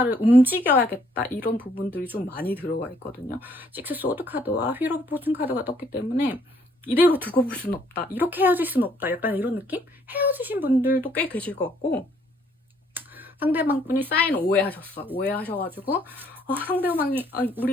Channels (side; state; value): both; normal; correlation 0.66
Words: 움직여야겠다 이런 부분들이 좀 많이 들어가 있거든요. 6 소드 카드와 휠 오브 포춘 카드가 떴기 때문에 이대로 두고 볼 수는 없다, 이렇게 헤어질 수는 없다, 약간 이런 느낌? 헤어지신 분들도 꽤 계실 것 같고, 상대방 분이 사인 오해하셔가지고 상대방이